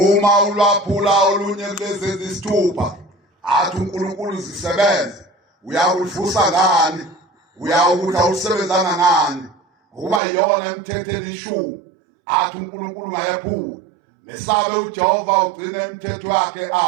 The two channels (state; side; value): drops out; left; at 10.2 s